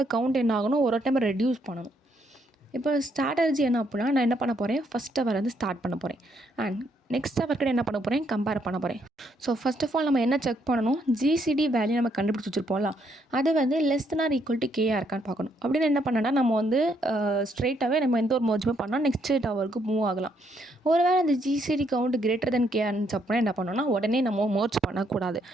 கவுண்ட் என்ன ஆகணும், ஒரு டைம் ரெடியூஸ் பண்ணணும். இப்போ ஸ்ட்ராட்டஜி என்ன அப்படின்னா, நான் என்ன பண்ண போகிறேன், ஃபஸ்ட் ஹவர் வந்து ஸ்டார்ட் பண்ண போகிறேன். அண்ட் நெக்ஸ்ட் ஹவர் கூட என்ன பண்ண போகிறேன், கம்பேர் பண்ண போகிறேன். ஸோ ஃபர்ஸ்ட் ஆஃப் ஆல் நம்ம என்ன செக் பண்ணணும், ஜிசிடி வேல்யூ நம்ம கண்டுபிடிச்சி வச்சுருப்போம்ல, அது வந்து less than or equal to kr இருக்கான்னு பார்க்கணும். அப்படின்னு என்ன பண்ணனா, நம்ம வந்து ஸ்ட்ரெயிட்டாகவே நம்ம எந்த ஒரு மர்ஜுமே பண்ணால் நெக்ஸ்ட் டவருக்கு மூவ் ஆகலாம். ஒருவேளை அந்த GCD count greater than KR இருந்துச்சு அப்படின்னா என்ன பண்ணணும்னா, உடனே நம்ம மர்ஜ் பண்ணக்கூடாது.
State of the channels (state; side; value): normal; both; correlation 0.73